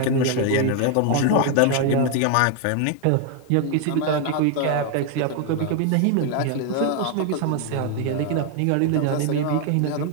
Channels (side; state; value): both; different; correlation 0.00